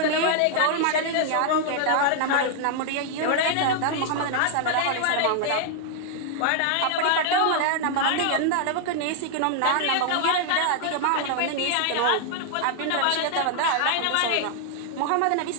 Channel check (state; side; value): different; both; correlation 0.00